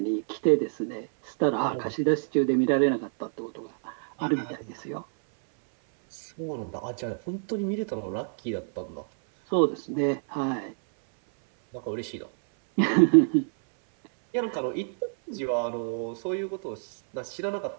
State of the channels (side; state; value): left; silent; 60 dB below the other